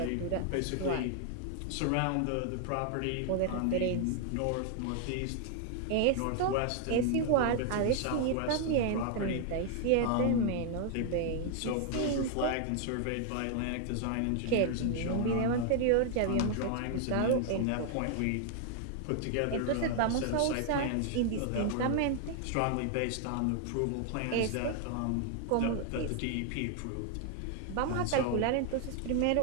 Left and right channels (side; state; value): both; different; correlation 0.00